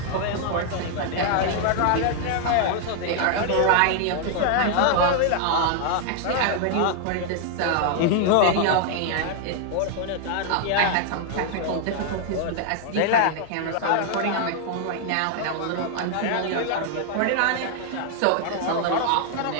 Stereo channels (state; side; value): different; both; correlation 0.00